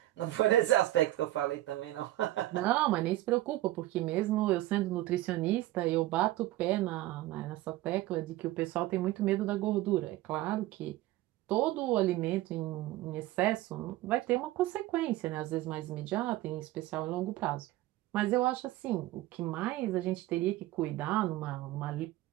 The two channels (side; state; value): left; quieter; 16.2 dB